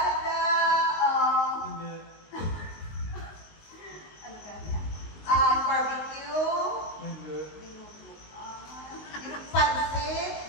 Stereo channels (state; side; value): late; right; 19 ms